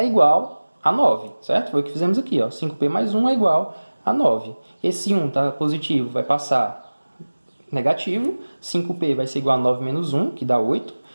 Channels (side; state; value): both; inverted; correlation -1.00